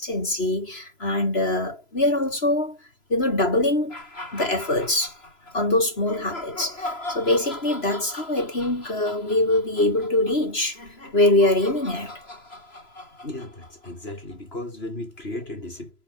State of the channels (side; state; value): right; late; 3.0 ms